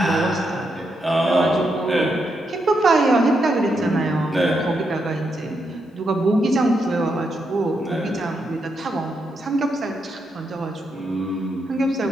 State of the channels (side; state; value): both; normal; correlation 0.82